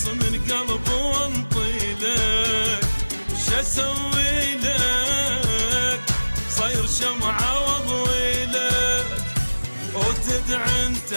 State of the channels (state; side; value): inverted; both; correlation -1.00